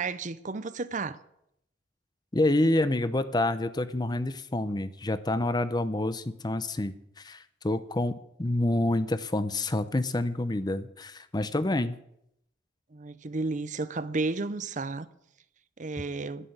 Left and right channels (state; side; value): normal; both; correlation 0.73